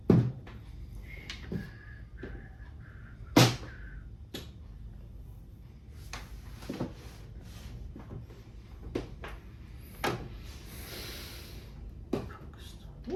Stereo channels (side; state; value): both; identical; correlation 1.00